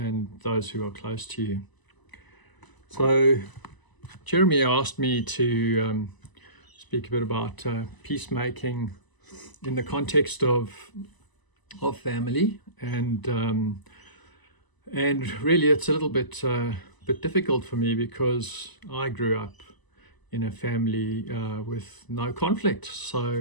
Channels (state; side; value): late; right; 1.0 ms